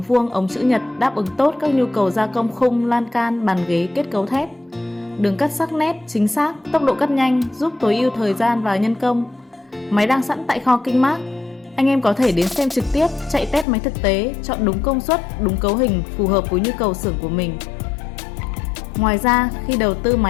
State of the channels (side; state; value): right; drops out; at 13.7 s